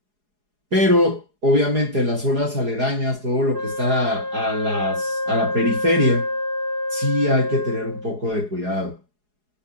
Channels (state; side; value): late; left; 4.8 ms